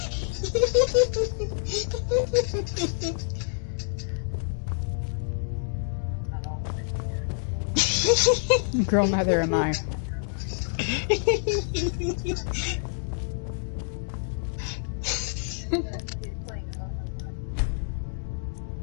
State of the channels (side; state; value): right; silent; digital silence